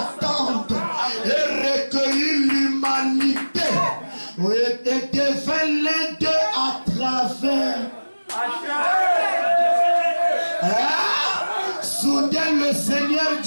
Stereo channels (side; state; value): both; inverted; correlation -1.00